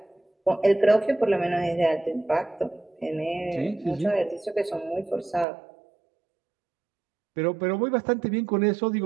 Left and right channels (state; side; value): drops out; left; at 5.5 s